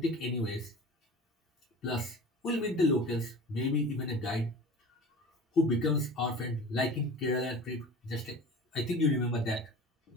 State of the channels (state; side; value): normal; both; correlation 0.38